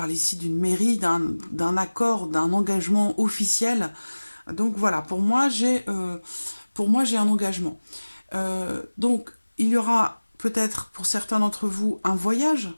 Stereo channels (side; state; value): both; inverted; correlation -1.00